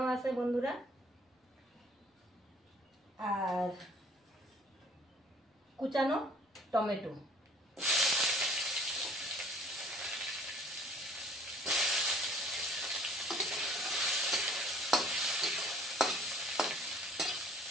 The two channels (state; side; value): normal; both; correlation 0.54